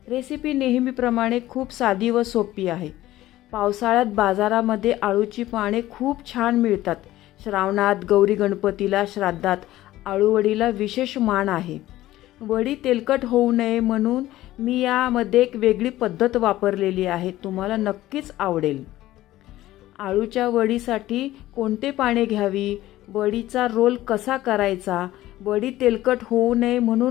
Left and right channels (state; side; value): quieter; right; 15.4 dB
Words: रेसिपी नेहमीप्रमाणे खूप साधी व सोपी आहे. पावसाळ्यात बाजारामध्ये आळूची पाने खूप छान मिळतात. श्रावणात, गौरी गणपतीला, श्राद्धात आळूवडीला विशेष मान आहे. वडी तेलकट होऊ नये म्हणून मी यामध्ये एक वेगळी पद्धत वापरलेली आहे. तुम्हाला नक्कीच आवडेल. आळूच्या वडीसाठी कोणते पाने घ्यावी, वडीचा रोल कसा करायचा, वडी तेलकट होऊ नये